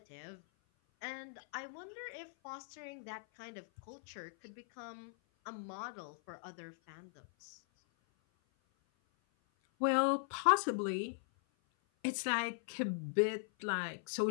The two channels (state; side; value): silent; right; 51 dB below the other